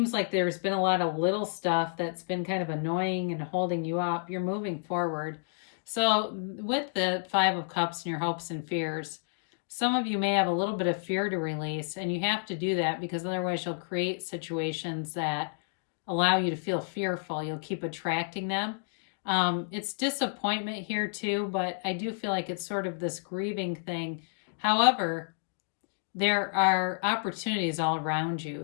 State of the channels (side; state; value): right; silent; digital silence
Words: like there's been a lot of little stuff that's been kind of annoying and holding you up, you're moving forward. So with the Five of Cups and your hopes and fears, some of you may have a little bit of fear to release, and you have to do that because otherwise you'll create situations that allow you to feel fearful. You'll keep attracting them. It's disappointment here too, but I do feel like it's sort of this grieving thing. However, there are opportunities all around you.